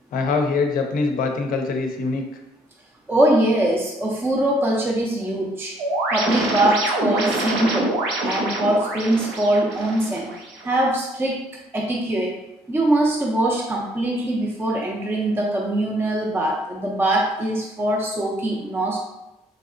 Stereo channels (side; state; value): both; normal; correlation 0.66